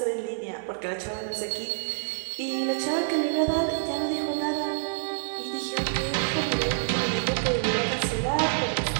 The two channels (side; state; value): left; silent; 56 dB below the other